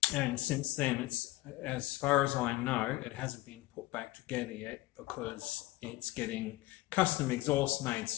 since then, it's, as far as I know, it hasn't been put back together yet because it's getting custom exhaust made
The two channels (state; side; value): quieter; right; 18.6 dB